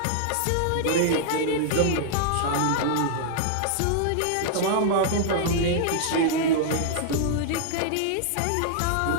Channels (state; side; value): different; both; correlation -0.01